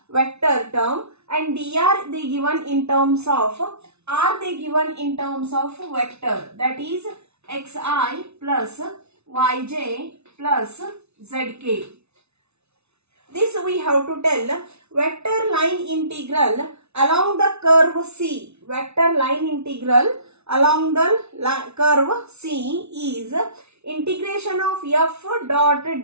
vector term and dr they given in terms of r they given in terms of vector, that is xi plus yj plus zk. This we have to tell vector line integral along the curve C. Vector line integral along the curve C is integration of f dot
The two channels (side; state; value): left; late; 0.81 ms